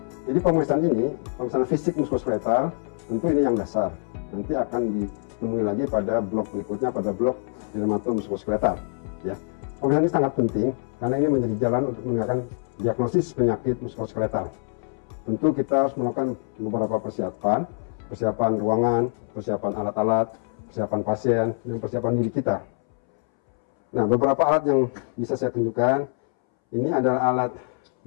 Jadi pemeriksaan fisik muskuloskeletal tentu ini yang dasar. Nanti akan ditemui lagi pada blok berikutnya, pada blok dermatomuskuloskeletal. Ya, pemeriksaan ini sangat penting karena ini menjadi jalan untuk menegakkan diagnosis penyakit muskuloskeletal. Tentu kita harus melakukan beberapa persiapan ruangan, persiapan alat-alat, persiapan pasien, dan persiapan diri kita. Nah, beberapa alat yang bisa saya tunjukkan, ini adalah alat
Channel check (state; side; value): silent; right; 62 dB below the other